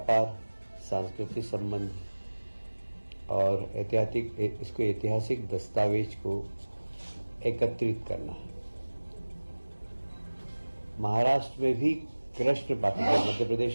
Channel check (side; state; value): both; inverted; correlation -1.00